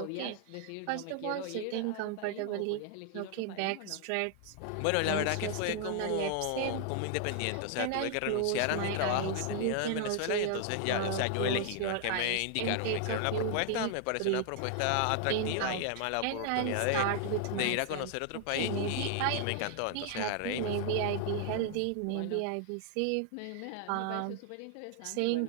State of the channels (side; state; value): both; different; correlation 0.00